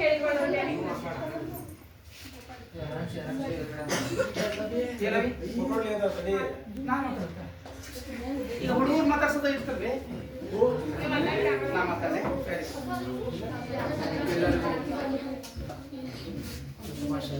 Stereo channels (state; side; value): identical; both; correlation 1.00